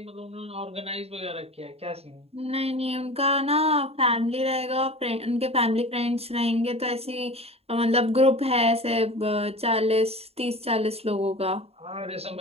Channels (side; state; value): left; late; 0.29 ms